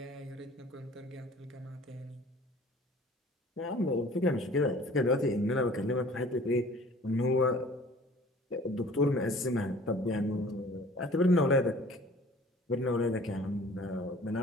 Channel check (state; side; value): normal; both; correlation 0.49